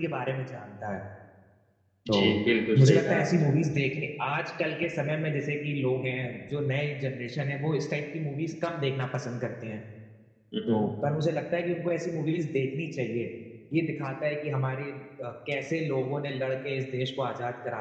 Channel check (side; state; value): both; identical; correlation 1.00